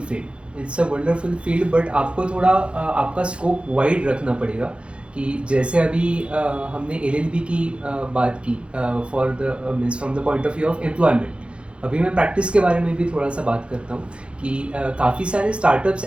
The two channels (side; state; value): left; late; 0.058 ms